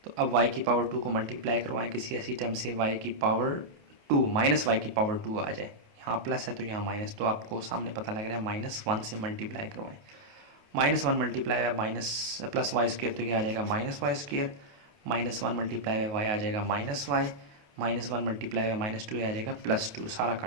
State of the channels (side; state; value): left; late; 28 ms